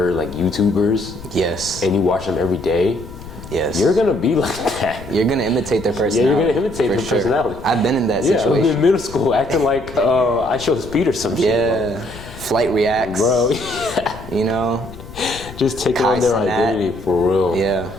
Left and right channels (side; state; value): left; noise; rumble, 15 dB below the sound